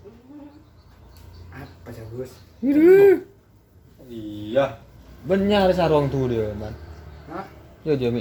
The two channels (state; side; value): identical; both; correlation 1.00